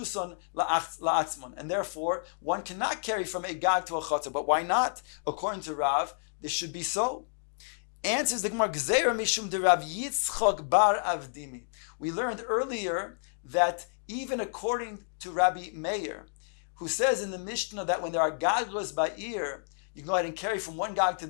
la'atzmon. And therefore, one cannot carry from a gag to a chotzer. But why not? According to Rav, this should be so. Answers the Gemara, Gzeira mishum de Rav Yitzchok bar Avdimi. We learned earlier that even according to Rabbi Meir, who says in the Mishnah that when there are gagos by ear, you can go ahead and carry from one gag to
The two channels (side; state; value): right; silent; digital silence